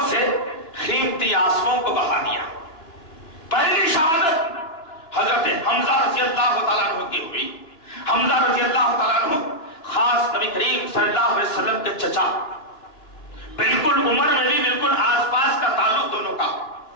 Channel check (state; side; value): late; right; 2.9 ms